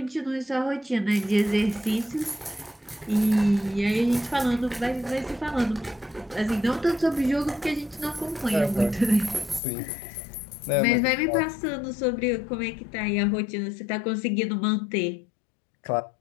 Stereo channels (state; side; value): drops out; right; at 9.6 s